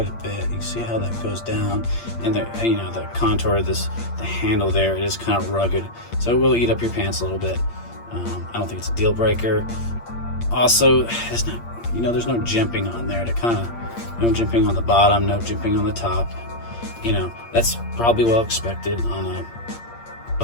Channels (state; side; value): late; right; 8.6 ms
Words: a bit. You see how that goes down, and the contour of the handle there, it is kind of rugged, so it will eat up your pants a little bit. I don't think it's a deal breaker. Also, it's not, you know, there's no jimping on there to kind of, no jimping on the bottom, no jimping on the top. You know, that's probably well expected on a